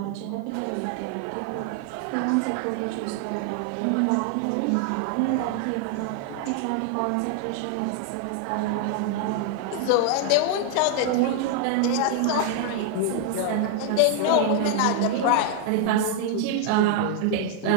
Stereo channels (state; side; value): different; both; correlation 0.00